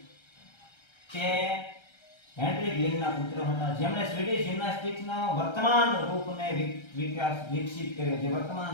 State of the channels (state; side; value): late; right; 1.3 ms